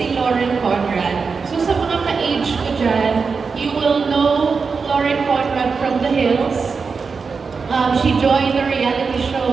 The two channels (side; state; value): left; quieter; 5.1 dB